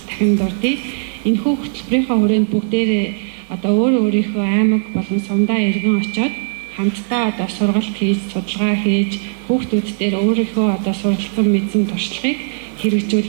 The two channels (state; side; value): silent; left; digital silence